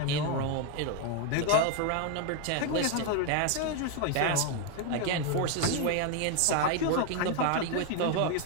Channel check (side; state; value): both; different; correlation 0.01